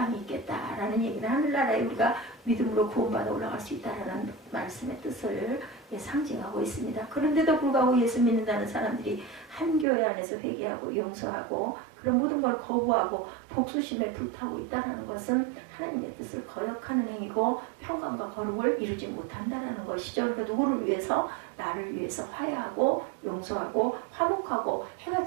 있겠다라는 얘기는 하늘나라에 우리가 믿음으로 구원받아 올라갈 수 있다라는 말씀의 뜻을 상징하고 있습니다. 그런데도 불구하고 예수 믿는다는 사람들이 한 교회 안에서 회개하고 용서하고 그런 모든 걸 거부하고 복수심에 불타고 있다는 것은 하나님의 뜻을 거역하는 행위고 평강과 거룩을 이루지 못한다는 것이죠. 그러니까 누구를 위해서? 나를 위해서 화해하고 용서하고 화목하고 해가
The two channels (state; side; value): drops out; left; at 9.9 s